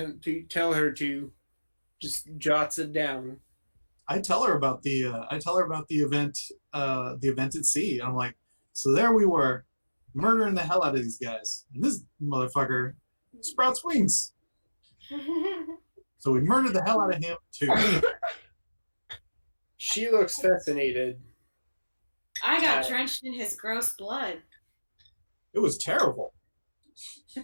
to. Just jots it down. I tell her about the event at sea. I'm like, so there we were, murdering the hell out of these guys, and this motherfucker sprouts wings. So we murdered the hell out of him too. She looks fascinated. I got drenched in his gross blood. It was terrible.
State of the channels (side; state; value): both; inverted; correlation -1.00